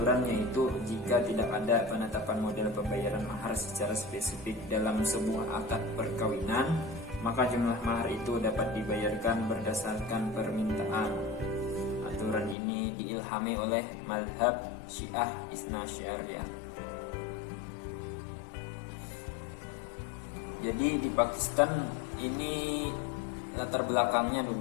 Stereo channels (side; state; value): right; drops out; at 12.6 s